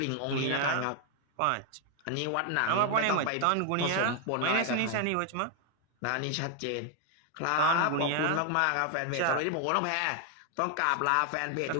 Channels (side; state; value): both; different; correlation 0.00